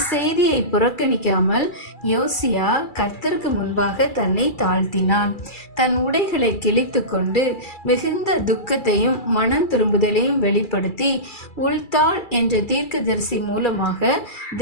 செய்தியை புறக்கணிக்காமல் யோசியா கர்த்தருக்கு முன்பாக தன்னை தாழ்த்தினான். தன் உடைகளை கிழித்து கொண்டு மிகுந்த துக்கத்தையும் மனம் திரும்புதலையும் வெளிப்படுத்தி உள்தாள் என்ற தீர்க்கதரிசி மூலமாக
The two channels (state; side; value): late; right; 2.3 ms